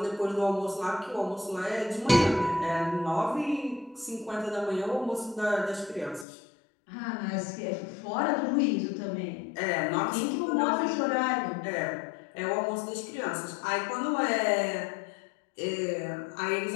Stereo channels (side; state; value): right; drops out; at 6.2 s